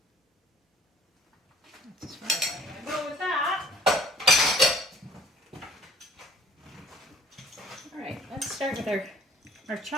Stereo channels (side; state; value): both; normal; correlation 0.54